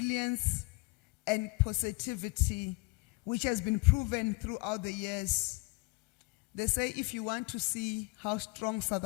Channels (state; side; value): quieter; right; 27.9 dB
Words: and positivity, which has been proven throughout the years. They say if you want to see how strong South